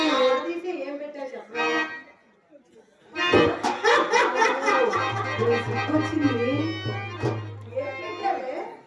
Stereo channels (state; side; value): identical; both; correlation 1.00